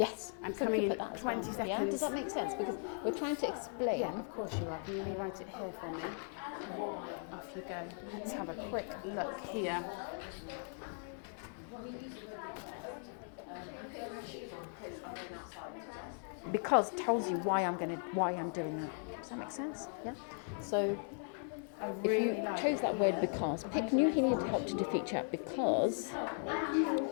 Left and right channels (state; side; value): silent; right; 52 dB below the other